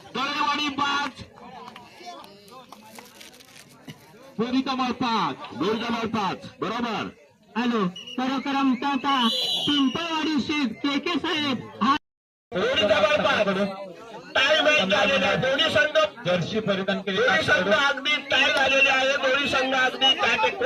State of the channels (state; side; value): identical; both; correlation 1.00